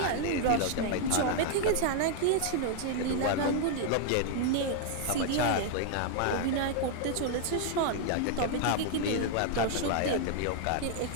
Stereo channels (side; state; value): both; different; correlation 0.00